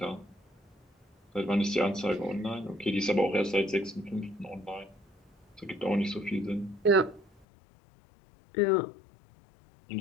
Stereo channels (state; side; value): drops out; right; at 7.5 s